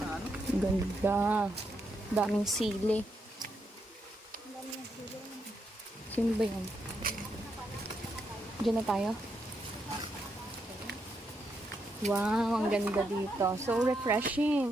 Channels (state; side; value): normal; both; correlation 0.81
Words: Ang ganda. Daming sili. Sino ba yan? Diyan na tayo? Wow, ang ganda dito. So